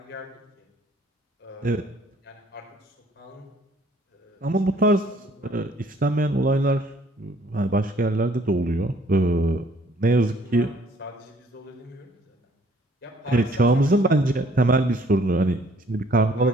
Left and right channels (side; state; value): both; normal; correlation 0.61